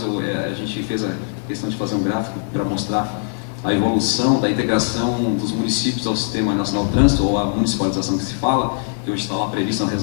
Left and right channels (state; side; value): silent; right; 65 dB below the other